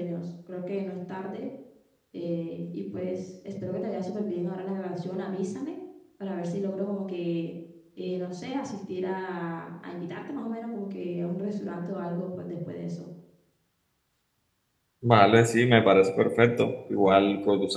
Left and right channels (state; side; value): identical; both; correlation 1.00